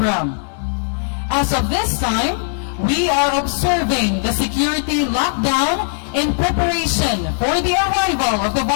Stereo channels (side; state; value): right; silent; 67 dB below the other